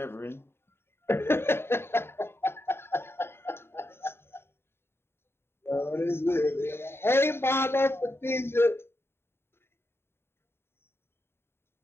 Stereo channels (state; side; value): late; right; 0.11 ms